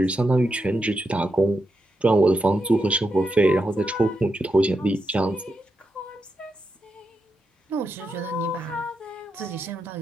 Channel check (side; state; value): both; normal; correlation 0.85